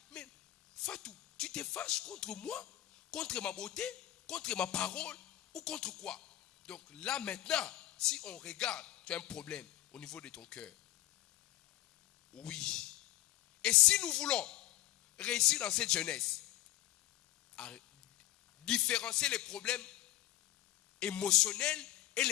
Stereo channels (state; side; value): quieter; right; 14.8 dB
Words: Mais Fatou, tu te fâches contre moi, contre ma beauté, contre ma parole ou contre quoi? Donc là maintenant, si on regarde, tu as un problème au niveau de ton cœur. Oui. Et si nous voulons réussir dans cette jeunesse, à différencier les problèmes émotionnels et